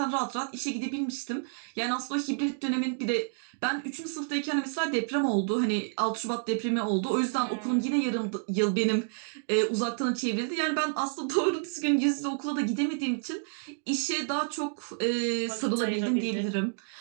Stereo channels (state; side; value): silent; left; digital silence